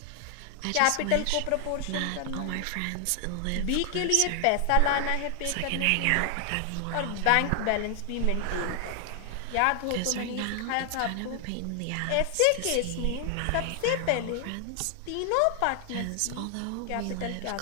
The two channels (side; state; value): both; different; correlation 0.00